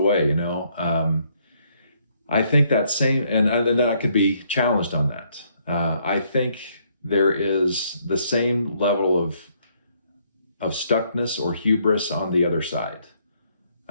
I think that same, and then I could be challenged on that. I think there is the same level of stuckness or hubris on the other side,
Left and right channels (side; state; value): both; inverted; correlation -0.70